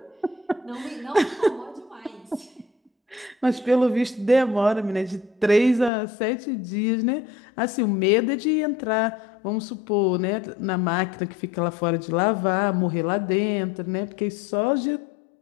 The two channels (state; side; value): drops out; right; at 5.9 s